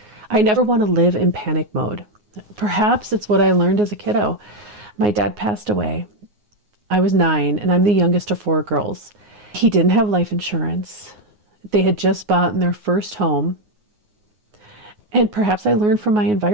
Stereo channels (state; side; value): late; left; 9.5 ms